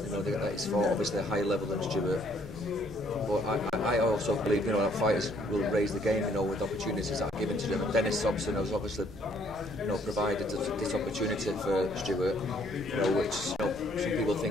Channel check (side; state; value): both; normal; correlation 0.65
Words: he's fought obviously a higher level than Stuart. But I also believe that fighters will raise the game, with opportunities that are given to them. And Dennis Hobson has obviously, provided this opportunity for Stuart, which some people